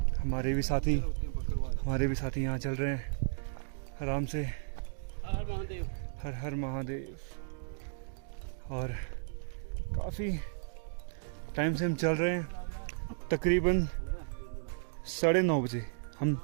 हमारे भी साथी यहाँ चल रहे हैं आराम से। हर हर महादेव। और काफ़ी टाइम से हम चल रहे हैं, तकरीबन 9:30 बजे हम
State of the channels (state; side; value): silent; left; digital silence